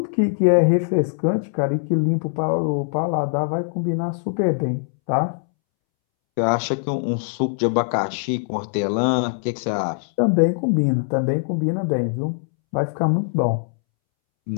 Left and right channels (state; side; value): silent; right; 64 dB below the other